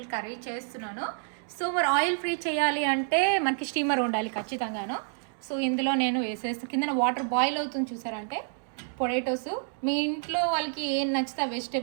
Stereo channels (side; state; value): left; silent; 59 dB below the other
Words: curry చేస్తున్నాను. సో మరి ఆయిల్ ఫ్రీ చేయాలి అంటే మనకి స్టీమర్ ఉండాలి ఖచ్చితంగాను. సో ఇందులో నేను వేసేస్తాను. కింద వాటర్ బాయిల్ అవుతుంది చూసారంటే, పొటాటోస్ మీ ఇంట్లో వాళ్ళకి ఏం నచ్చితే